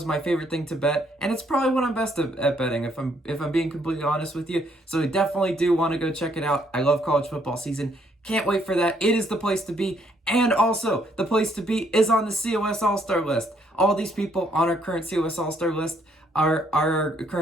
my favorite thing to bet, and it's probably what I'm best at betting, if I'm being completely honest with you. So I definitely do want to go check it out. I love college football season. Can't wait for that. It is the place to be. And also, the place to be is on the COS All-Star list. All these people on our current COS All-Star list are our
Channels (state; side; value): normal; both; correlation 0.69